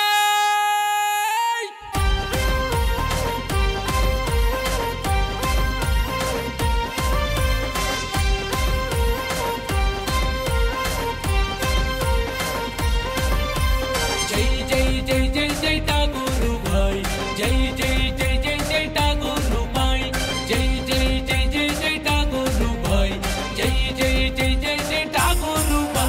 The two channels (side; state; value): both; identical; correlation 1.00